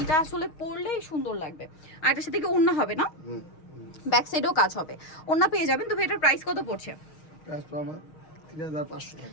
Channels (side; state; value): right; late; 6.4 ms